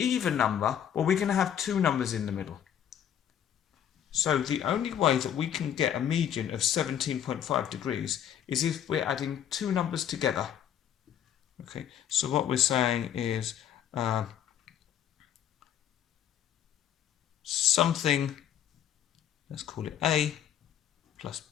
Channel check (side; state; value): right; quieter; 9.8 dB